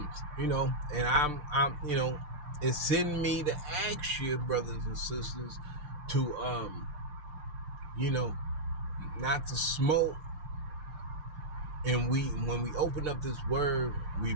I'm it's in me to ask you, brothers and sisters, to, not to smoke. And when we open up this word, we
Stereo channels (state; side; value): late; left; 6.7 ms